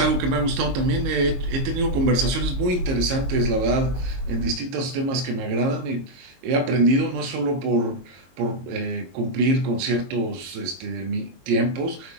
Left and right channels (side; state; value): left; late; 22 ms